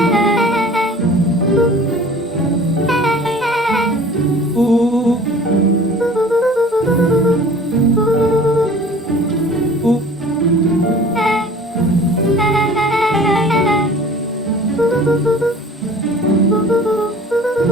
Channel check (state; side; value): normal; both; correlation 0.46